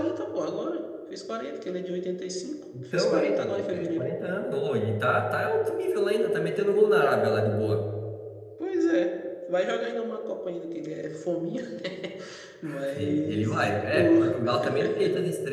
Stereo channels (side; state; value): both; identical; correlation 1.00